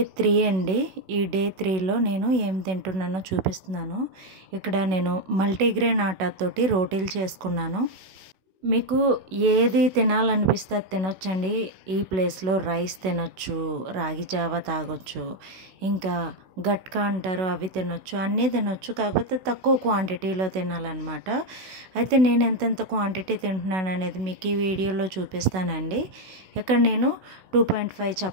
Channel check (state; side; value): late; left; 16 ms